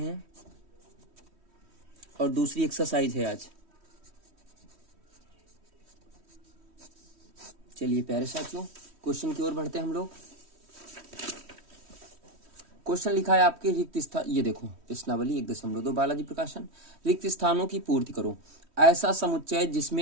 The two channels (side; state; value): left; late; 3.1 ms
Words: और दूसरी एक्सरसाइज है आज। चलिए प्यारे साथियों, क्वेश्चन की ओर बढ़ते हैं हम लोग। क्वेश्चन लिखा है आपके रिक्त स्थान, ये देखो प्रश्नावली 1.2 बालाजी प्रकाशन। रिक्त स्थानों की पूर्ति करो। ऐसा समुच्चय